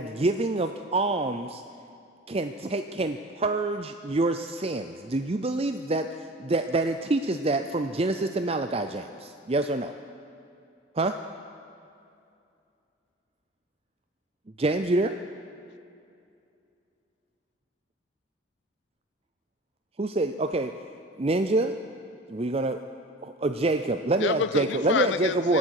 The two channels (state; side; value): normal; both; correlation 0.39